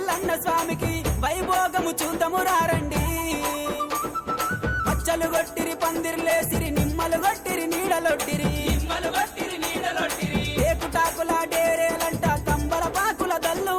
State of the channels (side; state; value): both; identical; correlation 1.00